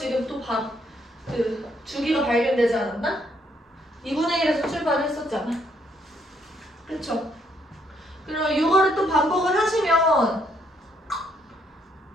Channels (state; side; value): normal; both; correlation 0.71